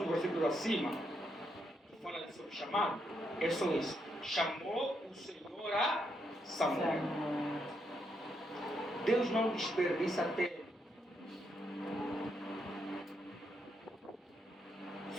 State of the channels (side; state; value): both; normal; correlation 0.79